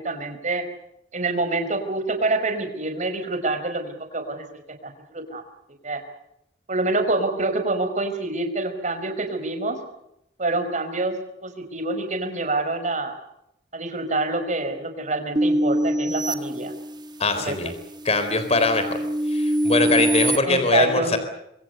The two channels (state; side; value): normal; both; correlation 0.19